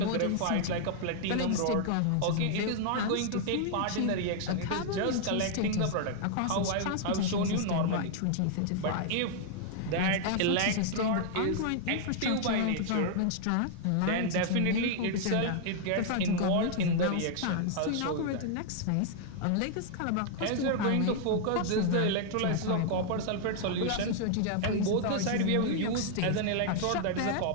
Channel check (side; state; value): both; different; correlation 0.00